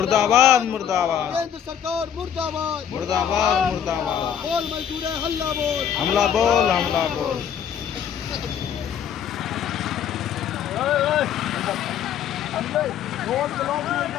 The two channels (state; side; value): quieter; right; 8.8 dB